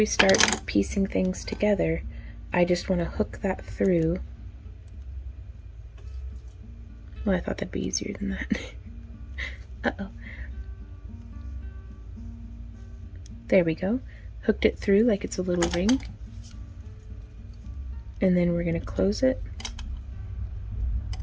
start piecing things together, I just want to hook that through. Well, I thought that'd be easier than that. Uh-oh. There we go. Hooked it through like it's a little ring. And then we're going to close it.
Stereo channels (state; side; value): identical; both; correlation 1.00